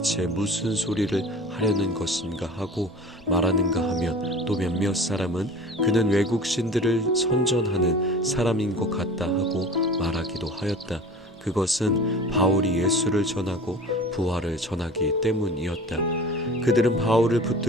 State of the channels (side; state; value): both; normal; correlation 0.41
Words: 무슨 소리를 하려는 것인가 하고 말하는가 하면 또 몇몇 사람은 그는 외국 신들을 선전하는 사람인 것 같다 하고 말하기도 하였다. 그것은 바울이 예수를 전하고 부활을 전하기 때문이었다. 그들은 바울을